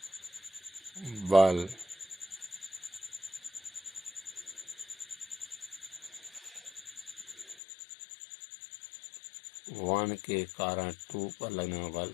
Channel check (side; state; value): right; drops out; at 7.6 s